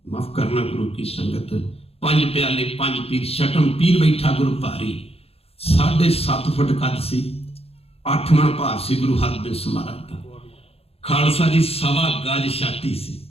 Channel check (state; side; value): late; right; 0.29 ms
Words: माफ करना गुरु की संगत, 5 प्याले 5 पीर, छठम पीर बैठा गुरु भारी, 7.5 फुट कद सी, 8 मन भार सी गुरु हरगोबिंद महाराज का। खालसा जी 1.25 गज छाती सी,